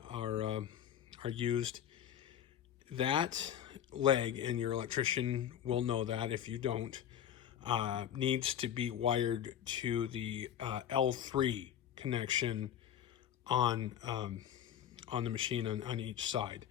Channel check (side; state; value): right; quieter; 10.0 dB